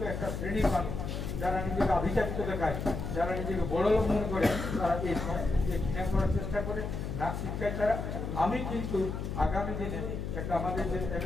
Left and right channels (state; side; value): noise; left; hum, 4 dB below the sound